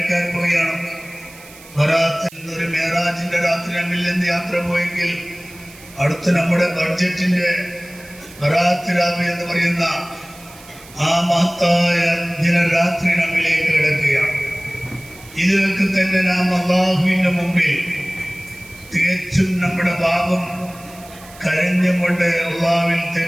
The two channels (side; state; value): right; noise; hiss, 21 dB below the sound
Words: പോവുകയാണ്. ബറാത്തിൽ ഒരു മേറാജിന്റെ രാത്രി നമ്മിൽ നിന്ന് യാത്ര പോയെങ്കിൽ അടുത്ത നമ്മുടെ ബഡ്ജറ്റിന്റെ ബറാത്ത് രാവ് എന്ന് പറയുന്ന ആ മഹത്തായ ദിനരാത്രി നമ്മിലേക്ക് കിടക്കുകയാണ്. ഇതിലേക്ക് തന്നെ നാം അല്ലാഹുവിന്റെ മുമ്പിൽ തികച്ചും നമ്മുടെ പാപം കരഞ്ഞുകൊണ്ട് അല്ലാഹുവിൽ